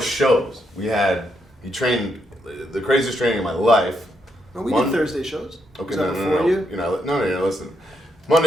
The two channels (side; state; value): both; normal; correlation 0.79